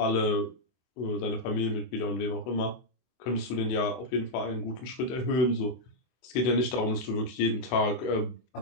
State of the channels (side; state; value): right; late; 24 ms